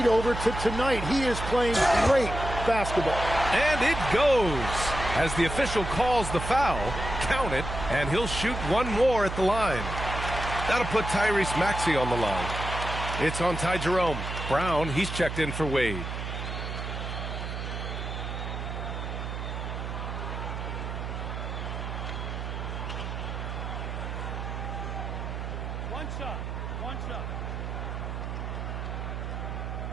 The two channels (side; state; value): right; noise; hum, 5 dB below the sound